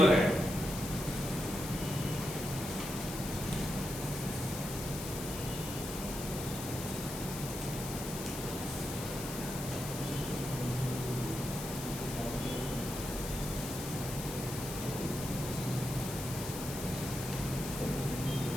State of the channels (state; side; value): noise; left; hiss, 8 dB below the sound